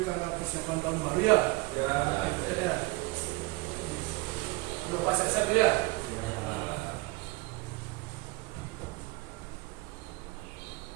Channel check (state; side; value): quieter; left; 23.3 dB